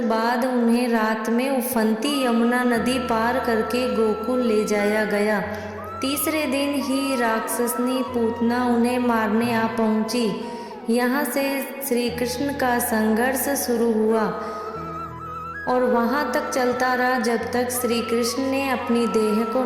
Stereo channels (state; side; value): identical; both; correlation 1.00